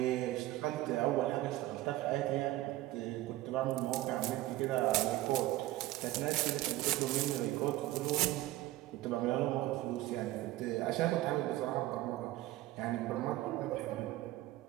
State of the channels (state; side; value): quieter; left; 16.7 dB